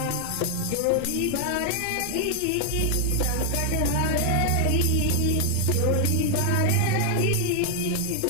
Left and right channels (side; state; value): both; different; correlation 0.00